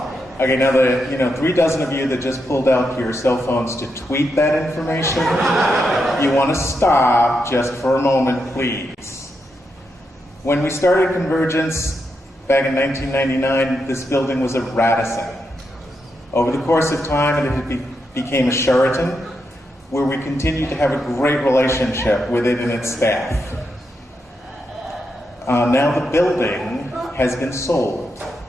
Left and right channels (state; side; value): normal; both; correlation 0.84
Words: Okay, now the 3 dozen of you that just pulled out your cell phones to tweet that information, you want to stop just for a moment, please. When we started CONvergence back in 1999, this building was a Radisson. Over the course of time, it became a Sheraton, where we continued to have a great relationship with it and its staff. Now the building has been sold.